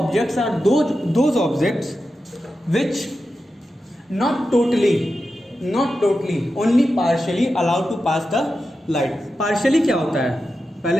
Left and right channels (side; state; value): both; normal; correlation 0.91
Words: are those objects which not totally only partially allowed to pass the light. partially क्या होता है?